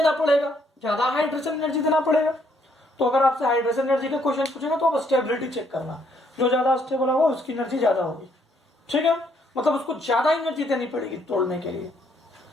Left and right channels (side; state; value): both; normal; correlation 0.70